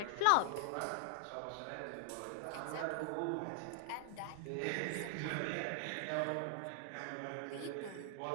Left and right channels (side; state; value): both; different; correlation 0.00